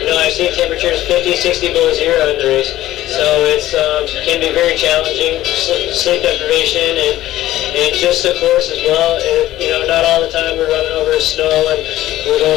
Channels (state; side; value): quieter; right; 14.8 dB